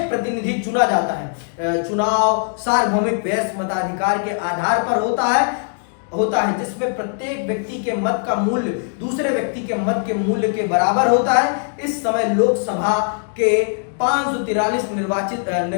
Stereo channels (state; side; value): silent; right; 66 dB below the other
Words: प्रतिनिधि चुना जाता है। चुनाव सार्वभौमिक वयस्क मताधिकार के आधार पर होता है, जिसमें प्रत्येक व्यक्ति के मत का मूल्य दूसरे व्यक्ति के मत के मूल्य के बराबर होता है। इस समय लोकसभा के 543